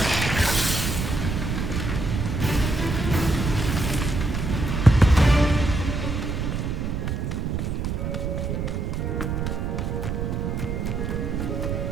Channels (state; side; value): noise; right; rumble, 1 dB below the sound